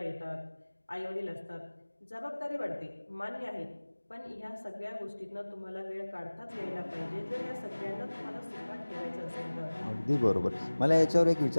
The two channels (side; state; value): both; inverted; correlation -1.00